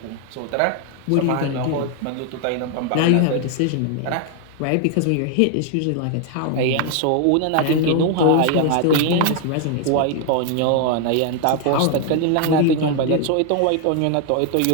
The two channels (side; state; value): both; different; correlation 0.00